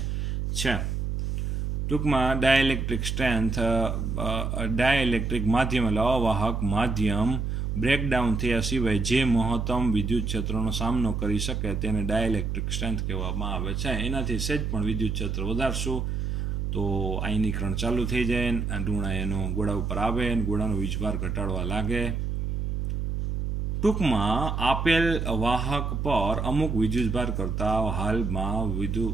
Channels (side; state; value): right; noise; hum, 1 dB below the sound